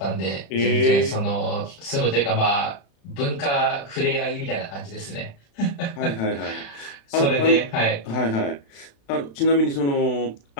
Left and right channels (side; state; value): right; late; 36 ms